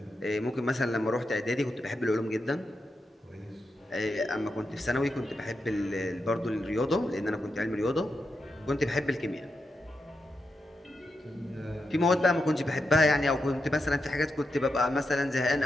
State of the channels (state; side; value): normal; both; correlation 0.86